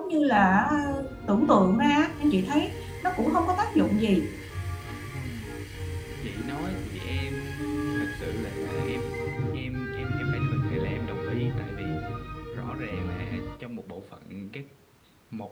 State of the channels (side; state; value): both; identical; correlation 1.00